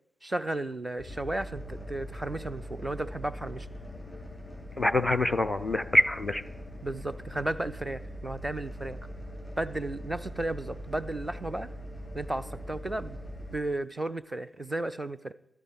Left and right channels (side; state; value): both; normal; correlation 0.91